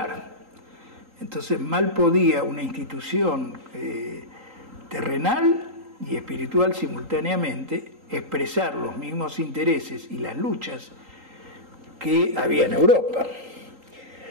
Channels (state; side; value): late; left; 3.8 ms